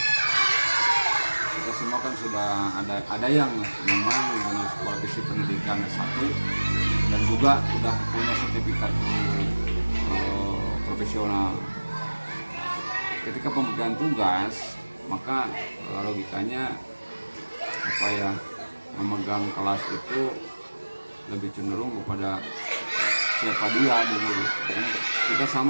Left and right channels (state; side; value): inverted; both; correlation -1.00